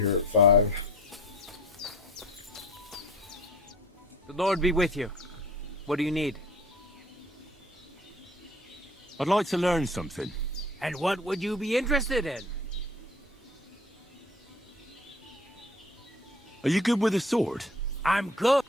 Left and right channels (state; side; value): normal; both; correlation 0.46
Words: at 5. The Lord be with you. What do you need? I'd like to learn something. And what would you be interested in? Are you good with a sword? I'm good.